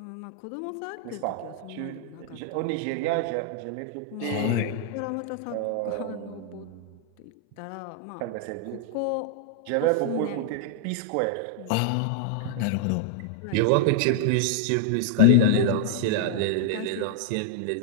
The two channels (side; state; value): both; different; correlation -0.01